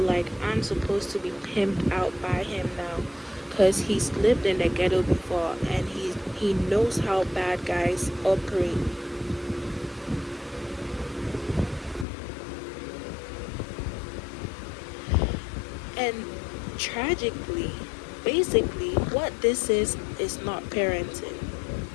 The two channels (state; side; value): drops out; right; at 12.1 s